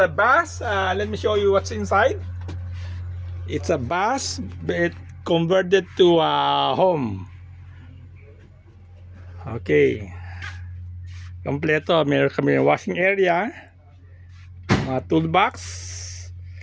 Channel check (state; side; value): identical; both; correlation 1.00